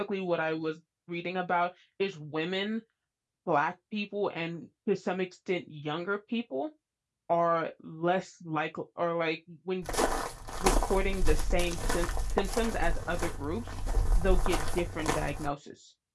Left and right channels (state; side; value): identical; both; correlation 1.00